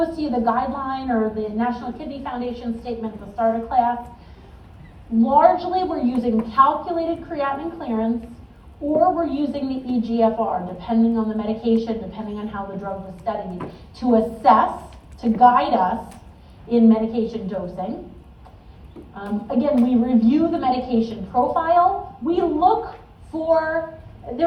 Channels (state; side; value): identical; both; correlation 1.00